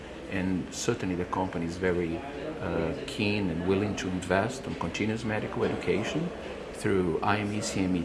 and certainly the company is very keen and willing to invest on continuous medical education through IME,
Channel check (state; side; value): identical; both; correlation 1.00